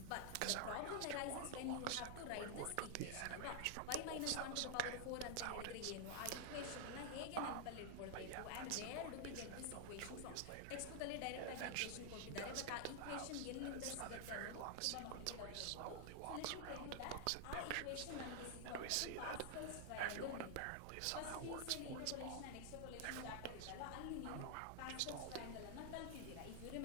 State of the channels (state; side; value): different; both; correlation 0.00